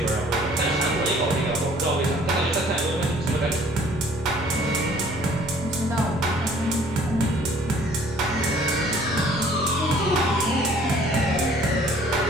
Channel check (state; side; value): normal; both; correlation 0.56